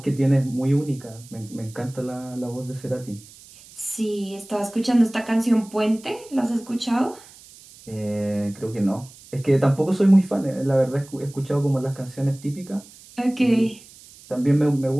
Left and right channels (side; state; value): right; noise; hiss, 22 dB below the sound